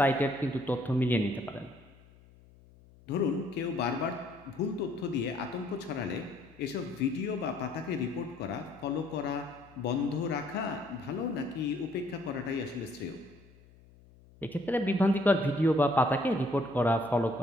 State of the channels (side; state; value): left; noise; hum, 25 dB below the sound